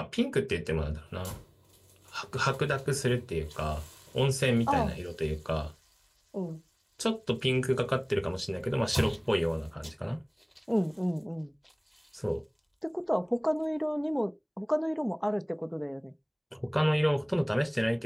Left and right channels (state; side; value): identical; both; correlation 1.00